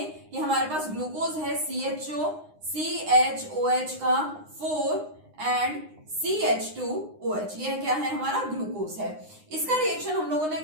कि हमारे पास ग्लूकोज है CHO CHOH का 4 एंड CH2OH, ये क्या है? हमारा ग्लूकोज है। इसका रिएक्शन हम लोगों ने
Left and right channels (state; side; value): late; left; 9.7 ms